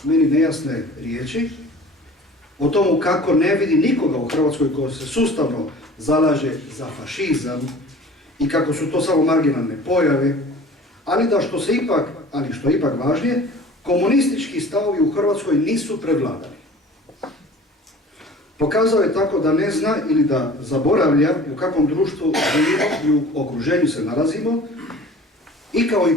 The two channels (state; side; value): normal; both; correlation 0.45